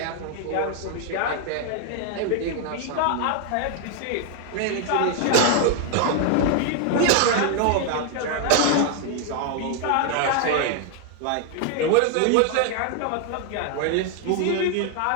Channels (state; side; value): different; both; correlation 0.00